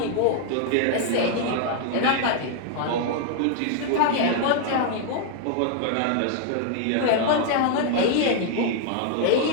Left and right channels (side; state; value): both; different; correlation 0.00